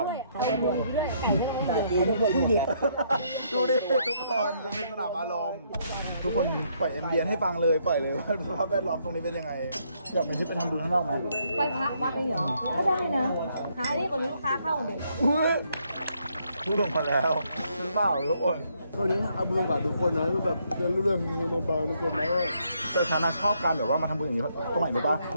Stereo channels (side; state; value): both; inverted; correlation -0.72